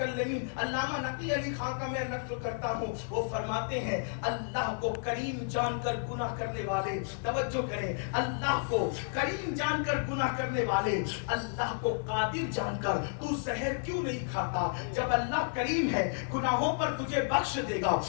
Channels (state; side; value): silent; right; digital silence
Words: علامہ نقی علی خان کا میں نقل کرتا ہوں، وہ فرماتے ہیں اللہ کو کریم جان کر گناہ کرنے والے، توجہ کریں، اللہ کو کریم جان کر گناہ کرنے والے، اللہ کو قادر جان کر تو زہر کیوں نہیں کھاتا؟ جب اللہ کریم ہے، گناہوں پر تجھے بخش دے گا